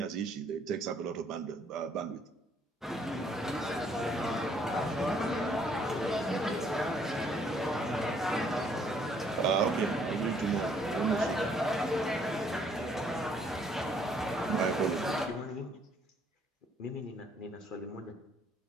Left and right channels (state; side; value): normal; both; correlation 0.65